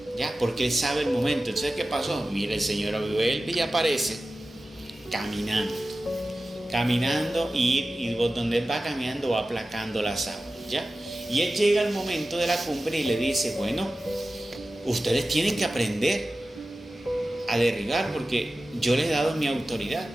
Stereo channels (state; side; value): normal; both; correlation 0.95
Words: ¿ya? Porque Él sabe el momento. Entonces, ¿qué pasó? Mira, el Señor vuelve y aparece caminando y donde Él va caminando va aplacando las aguas, ¿ya? Y Él llega al momento de la cumbre y le dice, bueno, ustedes tienen que aprender a derribar porque yo les he dado mi autoridad.